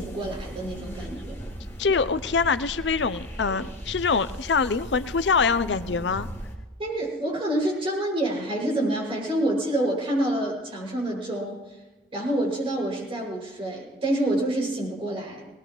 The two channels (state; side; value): normal; both; correlation 0.36